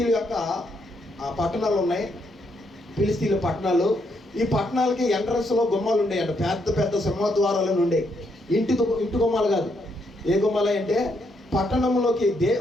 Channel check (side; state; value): both; normal; correlation 0.76